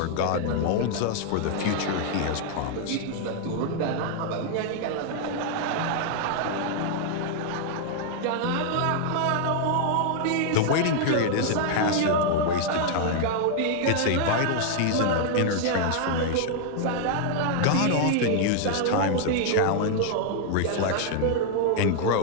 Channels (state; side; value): different; both; correlation 0.00